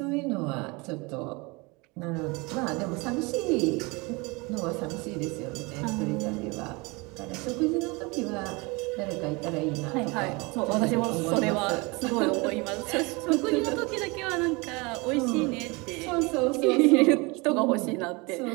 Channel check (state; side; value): quieter; left; 26.5 dB